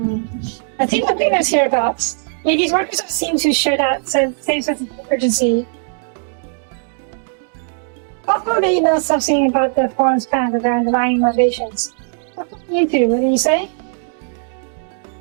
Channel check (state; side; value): silent; left; 67 dB below the other